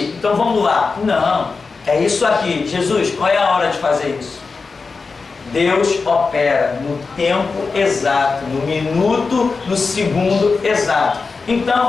então vamos lá. Não, é isso aqui. Jesus, qual é a hora de fazer isso? Deus opera no tempo exato, no minuto, no segundo exato.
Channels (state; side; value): quieter; right; 4.5 dB